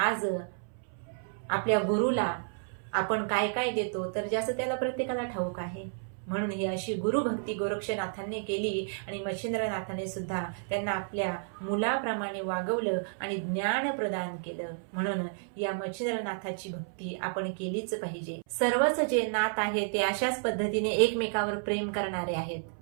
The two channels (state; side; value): silent; left; 57 dB below the other